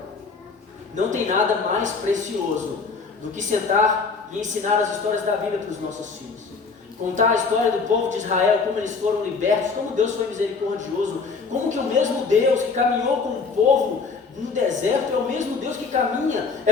Não tem nada mais precioso do que sentar e ensinar as histórias da Bíblia para os nossos filhos. Contar a história do povo de Israel, como eles foram libertos, como Deus foi misericordioso, como que o mesmo Deus que caminhou com o povo no deserto é o mesmo Deus que caminha.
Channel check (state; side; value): quieter; right; 4.7 dB